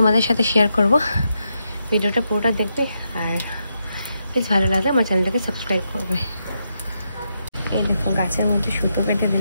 সাথে শেয়ার করব। ভিডিওটা পুরোটা দেখবে, আর প্লিজ ভালো লাগলে আমার চ্যানেলটাকে সাবস্ক্রাইব করবে। এই দেখো গাছের মধ্যে সুতো পেতে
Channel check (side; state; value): both; inverted; correlation -0.82